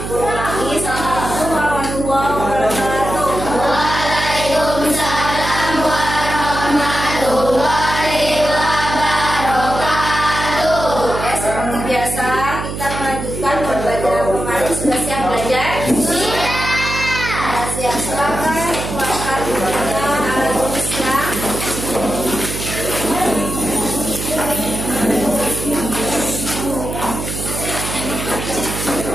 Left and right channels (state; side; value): noise; right; hum, 6 dB below the sound